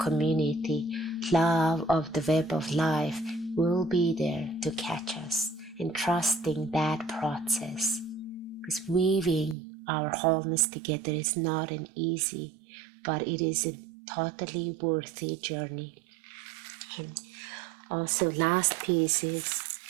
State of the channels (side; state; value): left; drops out; at 9.6 s